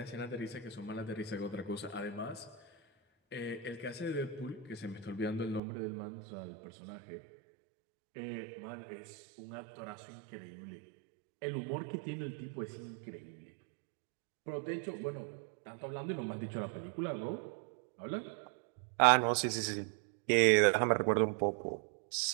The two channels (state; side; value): drops out; left; at 5.6 s